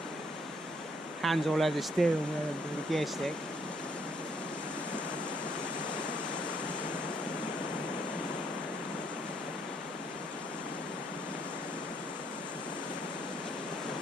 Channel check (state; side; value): normal; both; correlation 0.69